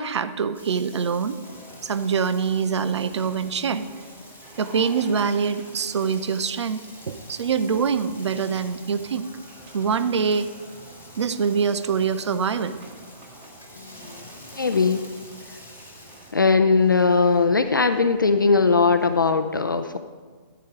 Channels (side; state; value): both; inverted; correlation -0.50